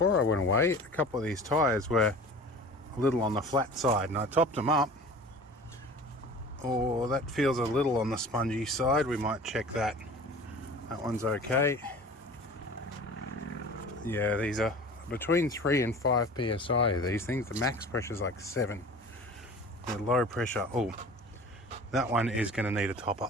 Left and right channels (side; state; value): both; normal; correlation 0.41